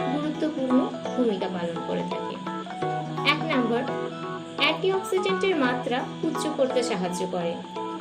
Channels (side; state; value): both; identical; correlation 1.00